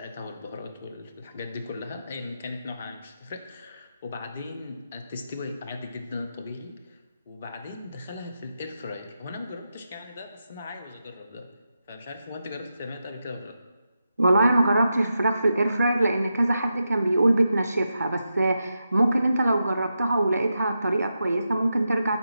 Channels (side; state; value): both; inverted; correlation -0.87